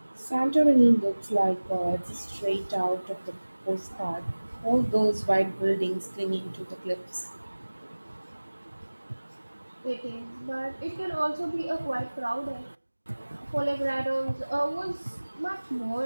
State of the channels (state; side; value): inverted; both; correlation -1.00